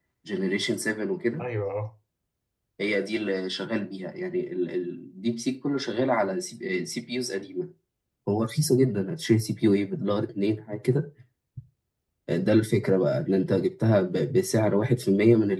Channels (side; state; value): both; identical; correlation 1.00